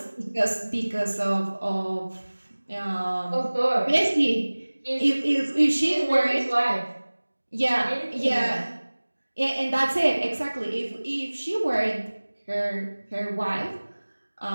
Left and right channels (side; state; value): both; inverted; correlation -1.00